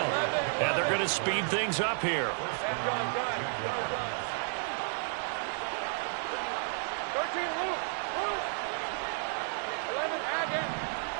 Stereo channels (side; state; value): left; silent; 56 dB below the other